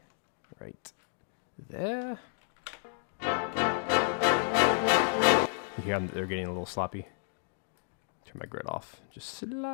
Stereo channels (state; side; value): silent; right; digital silence